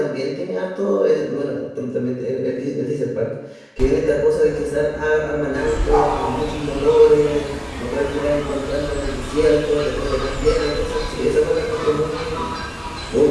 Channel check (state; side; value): identical; both; correlation 1.00